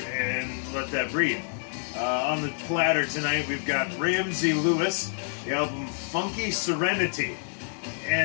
let that breathe. On the platter tonight, we've got Ramsey Lewis, the album Funky Serenity.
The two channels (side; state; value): right; silent; digital silence